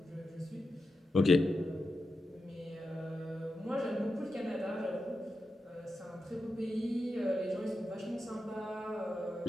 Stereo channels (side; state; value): both; normal; correlation 0.89